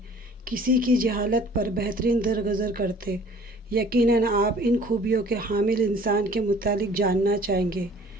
کسی کی جہالت پر بہترین درگزر کرتے۔ یقیناً آپ ان خوبیوں کے حامل انسان کے متعلق جاننا چاہیں گے۔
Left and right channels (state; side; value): normal; both; correlation 0.52